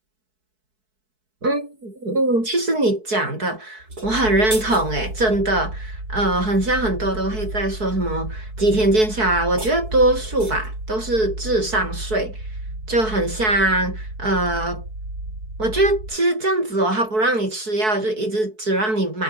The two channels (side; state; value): left; late; 4.6 ms